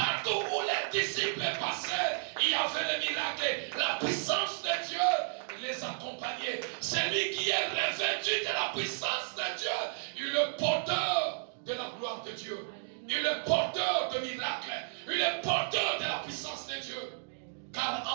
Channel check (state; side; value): silent; left; digital silence